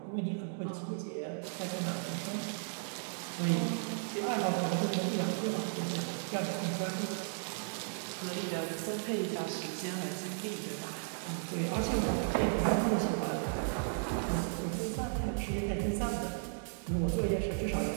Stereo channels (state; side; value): silent; left; digital silence